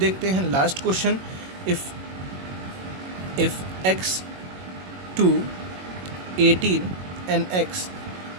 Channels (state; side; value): late; left; 22 ms